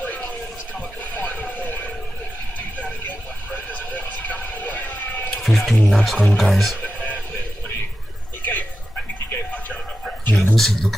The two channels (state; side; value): normal; both; correlation 0.91